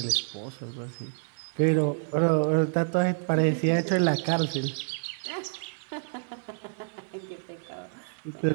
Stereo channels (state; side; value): silent; left; digital silence